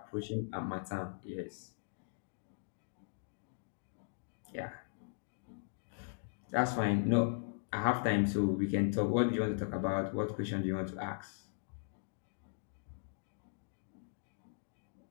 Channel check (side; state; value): right; silent; digital silence